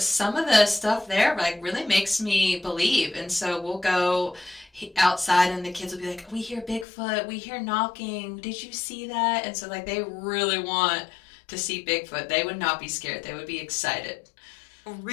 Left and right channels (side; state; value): right; drops out; at 6.9 s